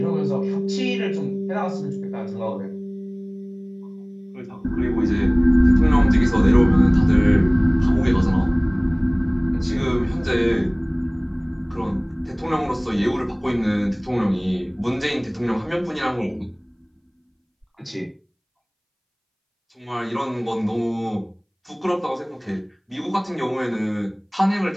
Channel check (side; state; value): both; identical; correlation 1.00